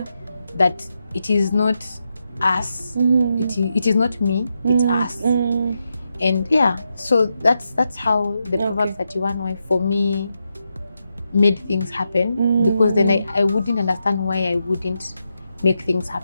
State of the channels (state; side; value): inverted; both; correlation -0.85